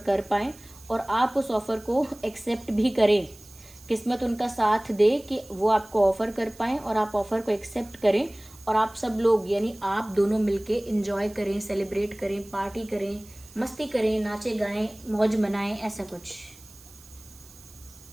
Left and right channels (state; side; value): noise; right; hiss, 22 dB below the sound